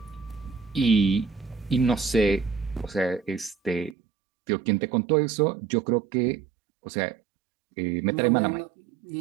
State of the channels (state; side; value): drops out; left; at 4.0 s